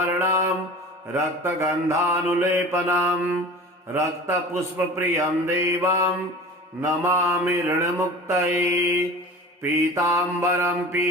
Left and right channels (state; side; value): normal; both; correlation 0.38